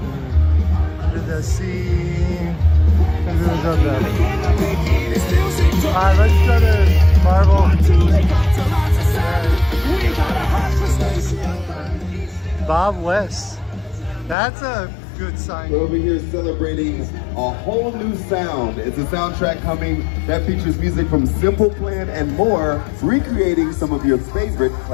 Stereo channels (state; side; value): drops out; right; at 14.4 s